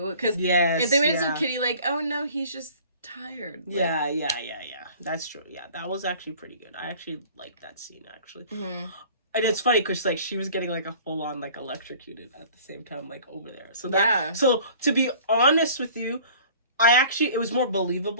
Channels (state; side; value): inverted; both; correlation -0.48